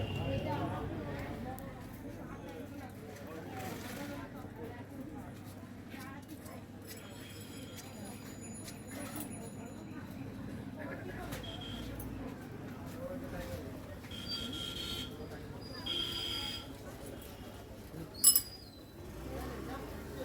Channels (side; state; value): both; identical; correlation 1.00